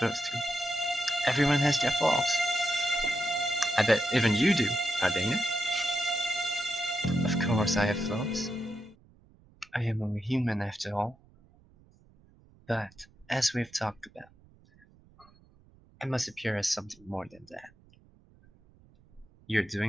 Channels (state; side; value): noise; right; rumble, 29 dB below the sound